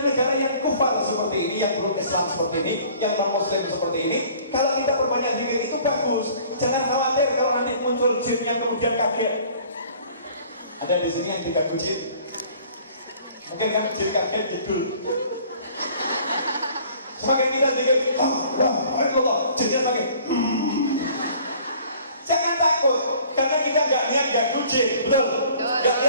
negara yang kufar seperti ini, yang belum Islam seperti ini, yang non-muslim seperti ini, kalau kita perbanyak zikir itu bagus. Jangan khawatir kalau nanti muncul jin yang kemudian kaget. Ada di sini yang juga jin. Mungkin kan jin kaget jedul. Semakin kita zikir, Allah, jinnya pakai. Jangan takut, karena kita nggak lihat ganggu jin, betul? Nggak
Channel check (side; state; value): both; inverted; correlation -0.52